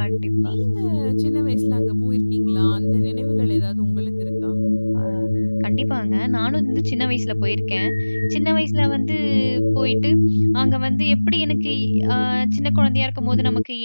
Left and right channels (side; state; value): both; inverted; correlation -1.00